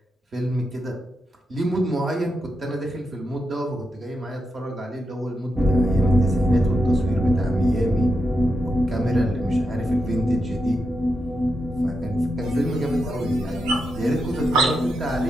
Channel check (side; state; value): both; normal; correlation 0.85